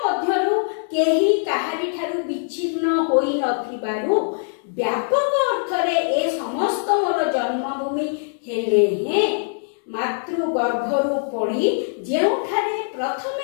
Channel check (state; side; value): silent; right; digital silence